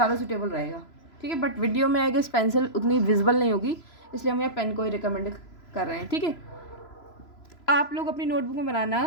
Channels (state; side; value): late; right; 3.0 ms